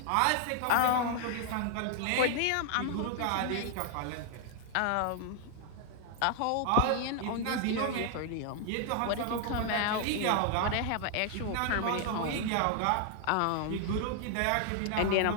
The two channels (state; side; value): different; both; correlation 0.00